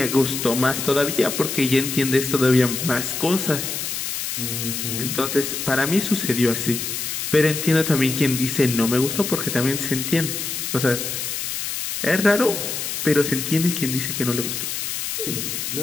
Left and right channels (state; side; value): noise; left; hiss, 4 dB below the sound